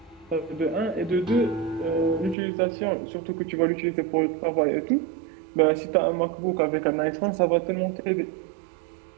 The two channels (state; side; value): drops out; left; at 2.4 s